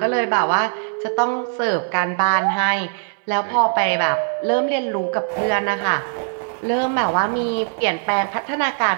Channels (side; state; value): left; silent; digital silence